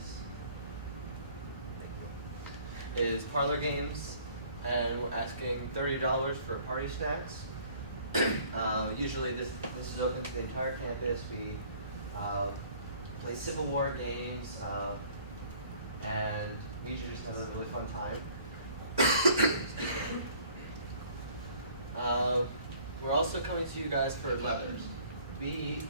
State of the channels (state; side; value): inverted; both; correlation -0.55